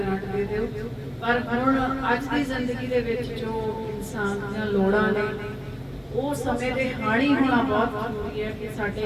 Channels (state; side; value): identical; both; correlation 1.00